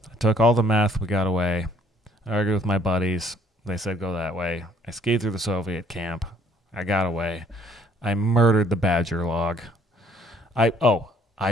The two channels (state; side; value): normal; both; correlation 0.62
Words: took all the meth, we got away. I argued with my buddies. They said go that way. I skied through the Soviet camp. I got away. I murdered the badger log. I